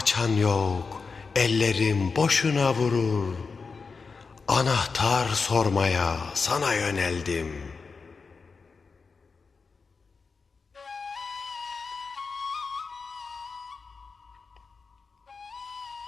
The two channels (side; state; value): right; quieter; 4.8 dB